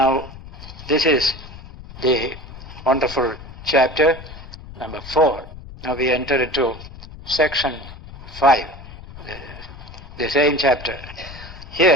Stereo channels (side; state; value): left; noise; rumble, 15 dB below the sound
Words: this is the wonderful chapter number 4. Now we enter into section 5, the same chapter.